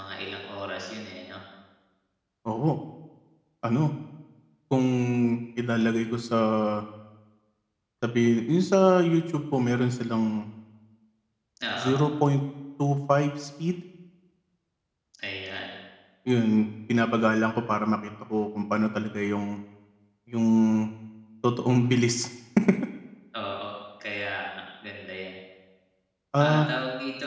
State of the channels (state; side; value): identical; both; correlation 1.00